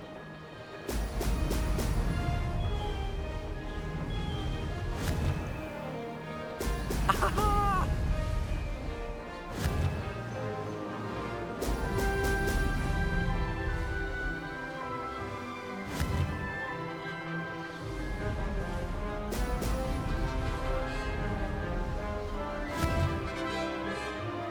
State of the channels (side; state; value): both; identical; correlation 1.00